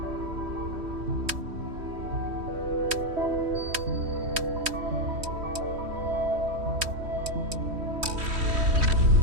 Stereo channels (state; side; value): late; left; 3.1 ms